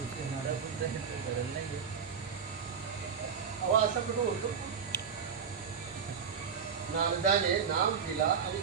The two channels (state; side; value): quieter; left; 6.7 dB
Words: असं कुठं होतो? नारदाने नाम दिला आणि